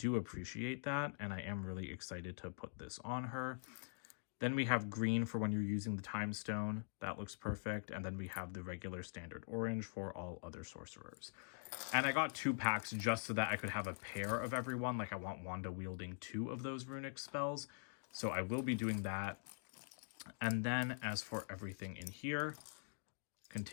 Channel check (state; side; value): silent; right; digital silence